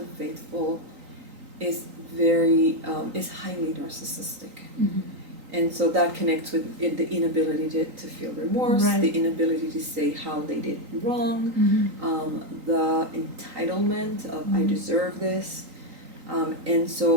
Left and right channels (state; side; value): late; left; 3.9 ms